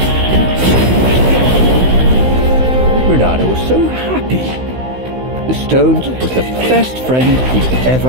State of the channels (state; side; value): late; left; 16 ms